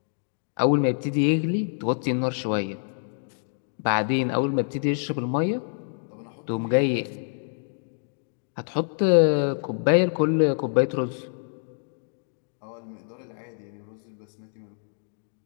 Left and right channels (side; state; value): right; silent; digital silence